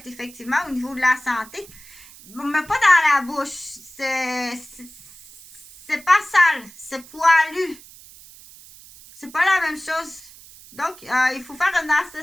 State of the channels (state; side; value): noise; right; hiss, 20 dB below the sound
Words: effectivement au niveau de la santé, mais pas dans la bouche. C'est pas sale, c'est poilu. C'est pas la même chose. Donc, il faut faire une